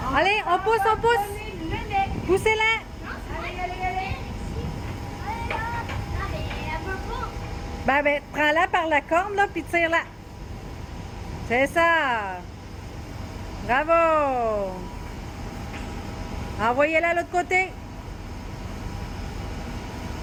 Allez, on pousse. Poussez-la. Allez. Ben, prends-la par la corne, là, puis tire-la. C'est ça. Bravo. Envoyez-la de l'autre côté.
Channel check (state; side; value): identical; both; correlation 1.00